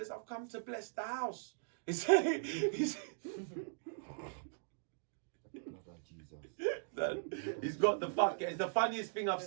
"I've come to bless the house." He's got the fuck. It's the funniest thing I've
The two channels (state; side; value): silent; left; digital silence